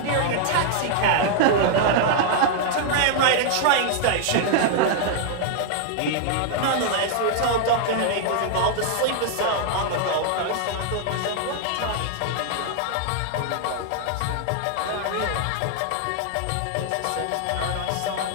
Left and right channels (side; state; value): both; different; correlation 0.00